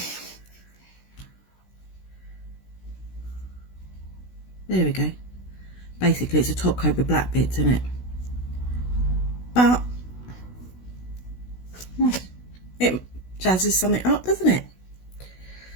There we go. Basically, it's a top coat with black bits in it. But it jazzes something up, doesn't it?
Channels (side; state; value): right; late; 16 ms